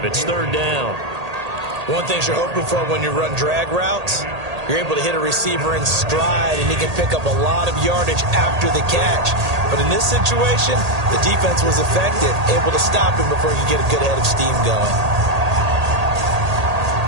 It's 3rd down. One thing you're hoping for when you run drag routes, you're able to hit a receiver in stride, and he can pick up a lot of yardage after the catch. But in this situation, the defense was effective, able to stop him before he could get a good head of steam going.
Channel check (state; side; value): late; left; 1.8 ms